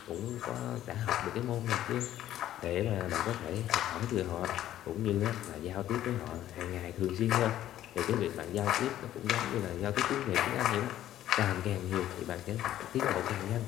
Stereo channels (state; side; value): quieter; right; 12.6 dB